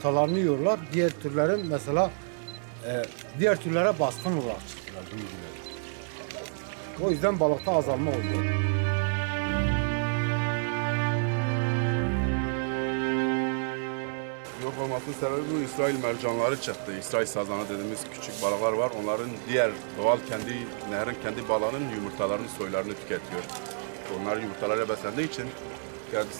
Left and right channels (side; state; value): left; silent; digital silence